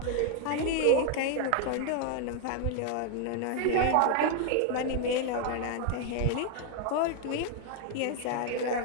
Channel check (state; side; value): different; both; correlation 0.01